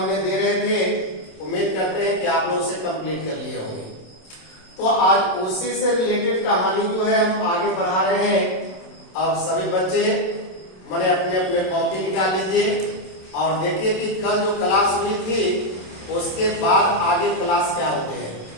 दे रहे थे, उम्मीद करते हैं कि आप लोग उसे कंप्लीट कर लिए होंगे। तो आज उसी से रिलेटेड कहानी जो है हम आगे बढ़ा रहे हैं। अब सभी बच्चे मैंने अपने अपने कॉपी निकाल लीजिए और देखिए कि कल जो क्लास हुई थी उसके बाद आगे क्लास क्या होते हैं।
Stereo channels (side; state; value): right; late; 27 ms